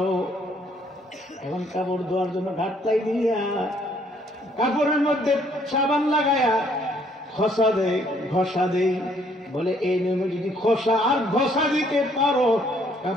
এখন কাপড় ধোয়ার জন্য ঘাটতাই দিয়া কাপড়ের মধ্যে সাবান লাগায়া ঘষা দেয়, ঘষা দেই। বলে এই নিয়মে যদি ঘষা আর ঘষা দিতে পারো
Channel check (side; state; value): both; normal; correlation 0.65